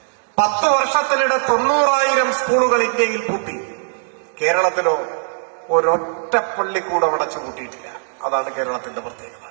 10 വർഷത്തിനിടെ 90,000 സ്കൂളുകൾ ഇന്ത്യയിൽ പൂട്ടി. കേരളത്തിലോ ഒരൊറ്റ പള്ളിക്കൂടം അടച്ചു പൂട്ടിയിട്ടില്ല. അതാണ് കേരളത്തിന്റെ പ്രത്യേകത.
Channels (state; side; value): silent; left; digital silence